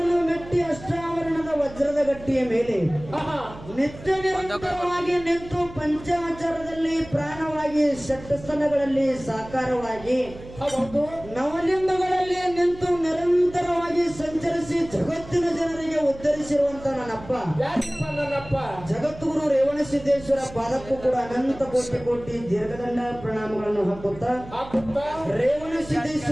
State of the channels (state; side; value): noise; right; hum, 17 dB below the sound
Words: ಮೆಟ್ಟಿ ಅಷ್ಟಾವರಣದ ವಜ್ರದ ಗಟ್ಟಿಯ ಮೇಲೆ ನಿತ್ಯ ನಿರಂತರವಾಗಿ ನಿಂತು ಪಂಚಾಚಾರದಲ್ಲಿ ಪ್ರಾಣವಾಗಿ ಷಟ್ಸ್ಥಲಗಳಲ್ಲಿ ಸಾಕಾರವಾಗಿ ನವಲಿಂಗಗಳಲ್ಲಿ ನಿಂತು ನಿರಂತರವಾಗಿ ಸಂಚರಿಸಿ ಜಗತ್ತಿನ ಜನರಿಗೆ ಉದ್ಧರಿಸಿರುವಂತ ನನ್ನಪ್ಪ ಜಗದ್ಗುರು ರೇವಣಸಿದ್ದೇಶ್ವರ ಪಾದಕ್ಕೂ ಕೂಡ ಅನಂತ ಕೋಟಿ ಕೋಟಿ ದೀರ್ಘದಂಡ ಪ್ರಣಾಮಗಳನ್ನು ಹಾಕುತ್ತಾ